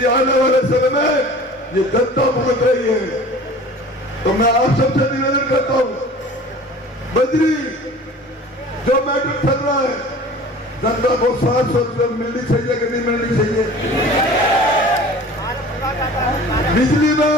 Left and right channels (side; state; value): both; normal; correlation 0.43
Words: आने वाले समय में ये जनता भुगत रही है। तो मैं आप सबसे निवेदन करता हूं, बजरी जो मैटर चल रहा है, जनता को 700 रुपये मिलनी चाहिए कि नहीं मिलनी चाहिए? बिजली में